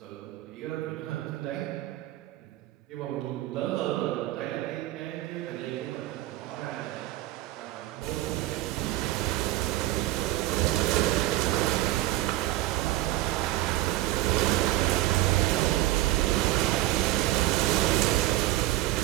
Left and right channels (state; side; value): quieter; left; 16.4 dB